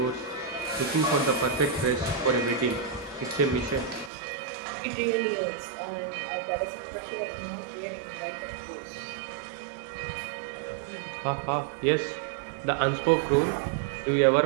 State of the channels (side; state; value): left; drops out; at 4.1 s